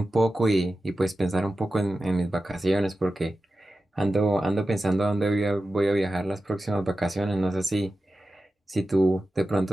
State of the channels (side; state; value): both; normal; correlation 0.93